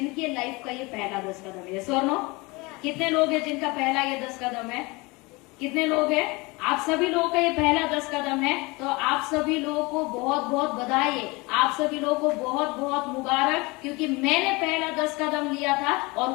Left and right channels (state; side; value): quieter; right; 25.1 dB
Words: लाइफ का ये पहला 10 कदम है। यस और नो? कितने लोग हैं जिनका पहला ये 10 कदम है? कितने लोग हैं? आप सभी लोगों का ये पहला 10 कदम है। तो आप सभी लोगों को बहुत बहुत बधाई, आप सभी लोगों को बहुत बहुत मुबारक, क्योंकि मैंने पहला 10 कदम लिया था और